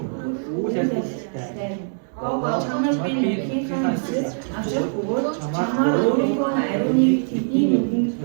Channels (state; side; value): silent; left; 64 dB below the other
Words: Гого чамд би нэгний ханаас авчрах бөгөөд чамаар өөрийнхөө ариуныг тэдний нүдэнд